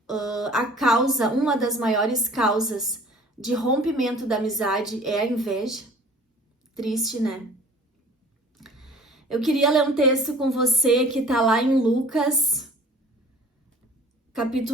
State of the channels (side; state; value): both; normal; correlation 0.48